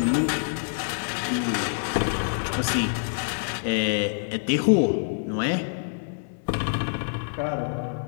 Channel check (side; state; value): right; silent; digital silence